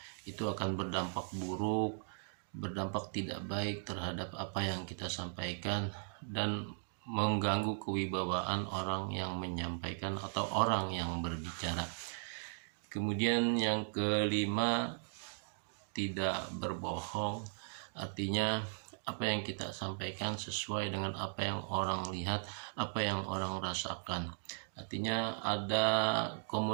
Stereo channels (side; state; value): left; silent; digital silence